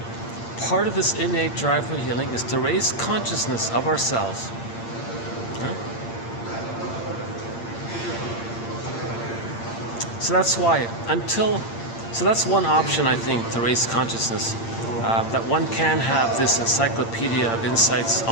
Part of this innate drive for healing is to raise consciousness of ourselves. Yeah? So that's why, so that's one option, I think, to raise consciousness, that one can have this encyclopedia of insights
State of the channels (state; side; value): late; right; 8.7 ms